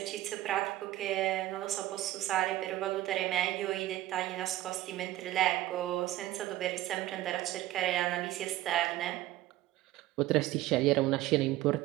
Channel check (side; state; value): left; quieter; 15.3 dB